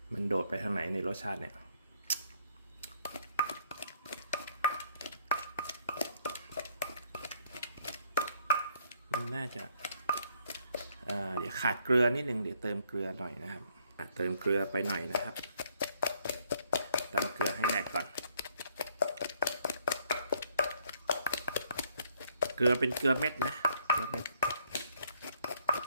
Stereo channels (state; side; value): inverted; both; correlation -0.67